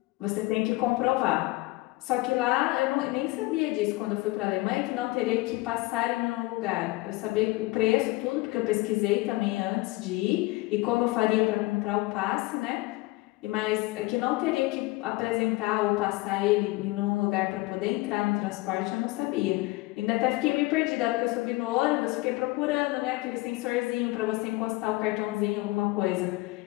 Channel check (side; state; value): right; quieter; 21.4 dB